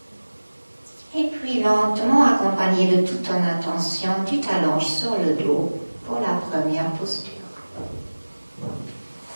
Et puis puis lentement, accompagné de toute ton attention, tu t'allonges sur le dos pour la première posture.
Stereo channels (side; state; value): both; inverted; correlation -1.00